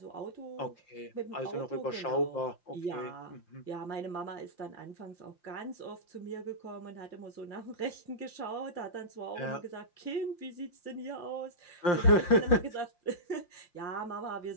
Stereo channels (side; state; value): right; late; 5.7 ms